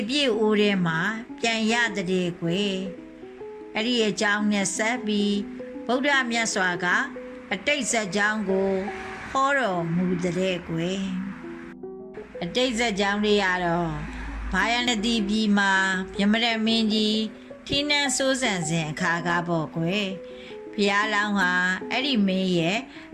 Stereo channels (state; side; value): identical; both; correlation 1.00